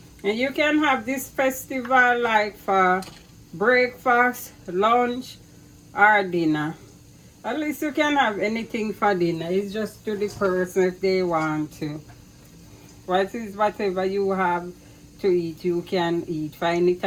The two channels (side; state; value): both; identical; correlation 1.00